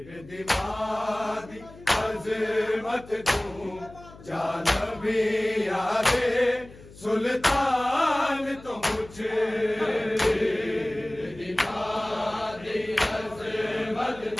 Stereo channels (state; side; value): noise; left; hum, 20 dB below the sound